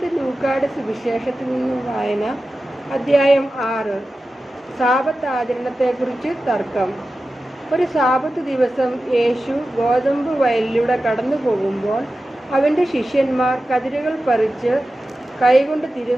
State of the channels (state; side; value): normal; both; correlation 0.94